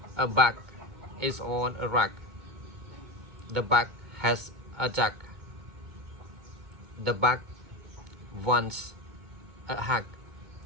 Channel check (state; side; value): late; left; 2.2 ms